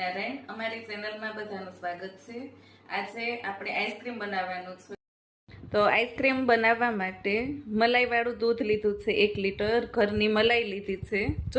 અમારી ચેનલમાં બધાનું સ્વાગત છે. આજે આપણે આઈસ્ક્રીમ બનાવવાનું છે. તો આઈસ્ક્રીમ બનાવવા માટે મલાઈવાળું દૂધ લીધું છે 1 લીટર. ઘરની મલાઈ લીધી છે,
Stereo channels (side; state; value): both; identical; correlation 1.00